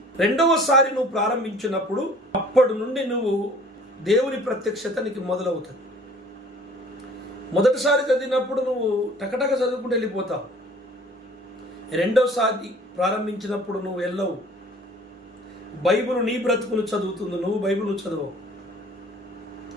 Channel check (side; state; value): both; normal; correlation 0.51